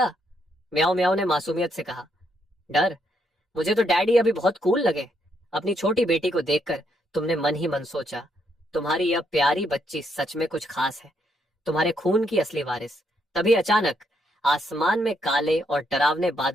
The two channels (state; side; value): normal; both; correlation 0.75